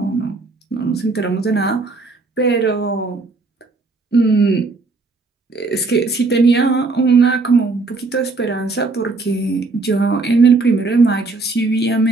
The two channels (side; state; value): left; quieter; 3.7 dB